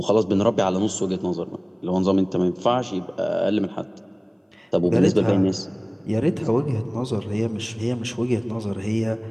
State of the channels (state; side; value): identical; both; correlation 1.00